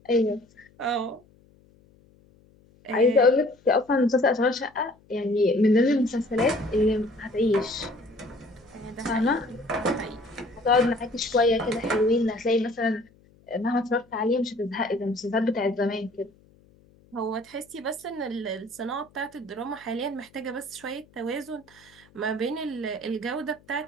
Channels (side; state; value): left; noise; hum, 30 dB below the sound